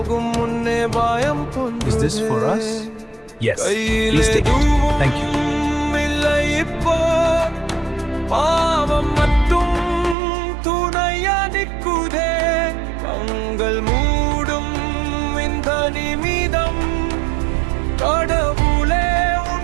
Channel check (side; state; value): left; drops out; at 10.2 s